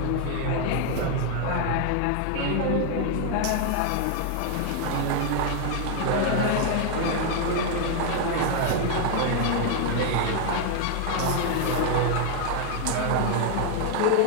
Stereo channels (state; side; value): different; both; correlation 0.00